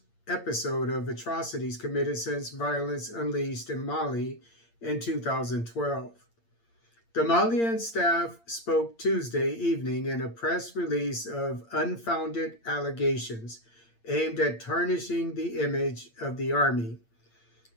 episode of atrocities committed since violence unleashed in Mali in 2012. The Malian staff spoke Tuesday evening in a press release of unfounded allegations aimed at tarnishing the image of the army.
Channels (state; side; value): late; right; 8.7 ms